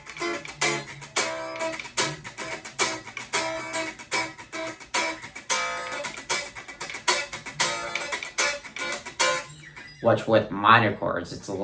which with minor chords, it's a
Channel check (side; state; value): both; identical; correlation 1.00